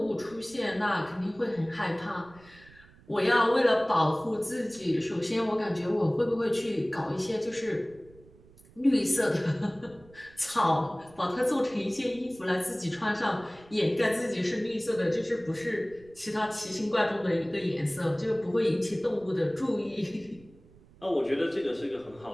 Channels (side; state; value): right; noise; rumble, 25 dB below the sound